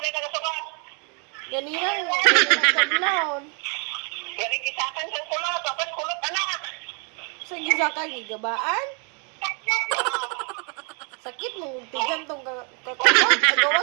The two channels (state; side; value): quieter; left; 36.6 dB